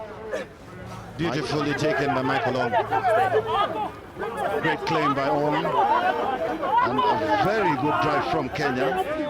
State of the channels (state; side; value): identical; both; correlation 1.00